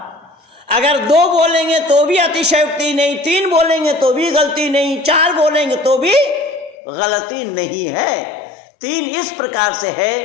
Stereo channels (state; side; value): drops out; right; at 6.8 s